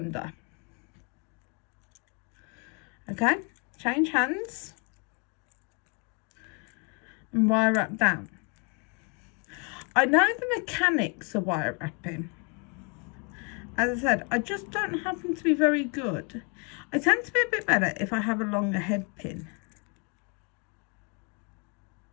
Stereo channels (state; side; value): quieter; right; 35.5 dB